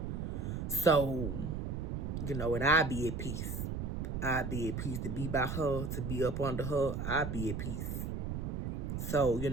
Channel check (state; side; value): noise; right; rumble, 3 dB below the sound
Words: So, you know, and I be at peace. I be at peace to be by her, to be up under her. I be at peace. So, you